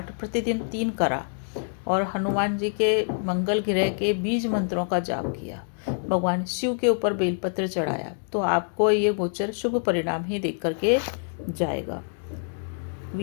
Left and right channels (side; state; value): right; silent; 61 dB below the other